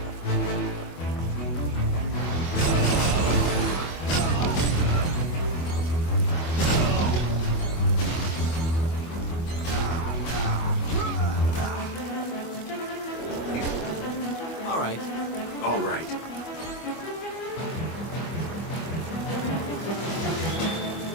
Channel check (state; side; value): late; right; 24 ms